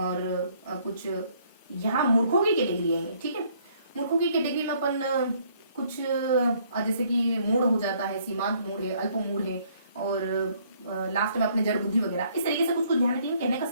कुछ यहाँ मूर्खों की कैटेगरी है, ठीक है। मूर्खों की कैटेगरी में अपन कुछ जैसे कि मूढ़ हो जाता है, सीमांत मूढ़ है, अल्प मूढ़ है, और लास्ट में अपने जड़ बुद्धि वगैरह, इस तरीके से कुछ ध्यान रखेंगे। कहने का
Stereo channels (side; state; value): both; inverted; correlation -0.64